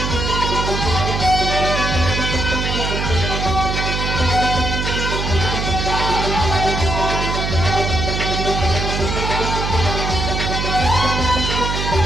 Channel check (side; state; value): right; noise; hum, 2 dB below the sound